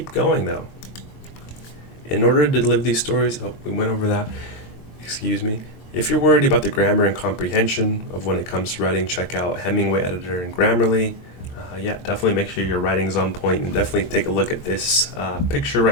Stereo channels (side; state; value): right; late; 22 ms